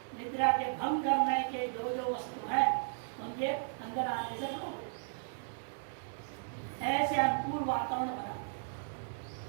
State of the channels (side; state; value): left; silent; digital silence